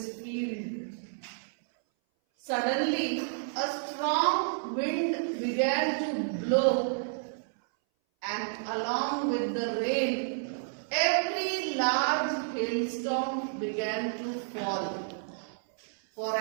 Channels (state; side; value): silent; left; 57 dB below the other